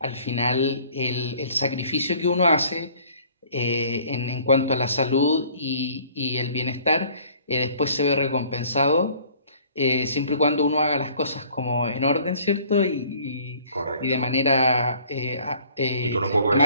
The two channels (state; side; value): inverted; both; correlation -0.55